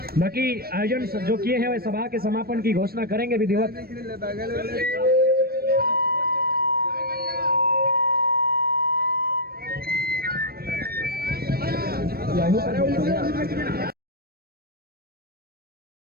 बाकी आयोजन जो किए हैं वे सभा के समापन की घोषणा करेंगे विधिवत।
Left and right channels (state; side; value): late; left; 0.44 ms